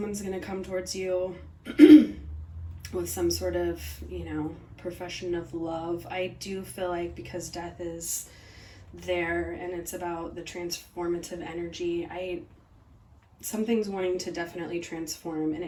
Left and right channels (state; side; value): identical; both; correlation 1.00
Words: going to come towards you with some sort of, profession of love. I do feel like because death is there and it's about the transformative energy, something's wanting to definitely transform, and